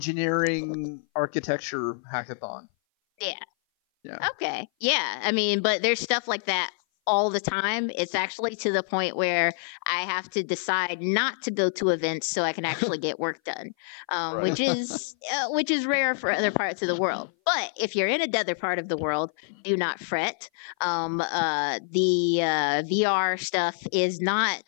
architecture hackathon. Yeah. Yeah. Okay. Yeah. I mean, but there's stuff like that all the time. It's actually to the point where I have to decide not to go to events so I can actually get work done, Right. which is rare for other parts of the world. But if you're in another part of the world, do not fret. The VR stuff is not.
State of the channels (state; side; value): silent; right; 57 dB below the other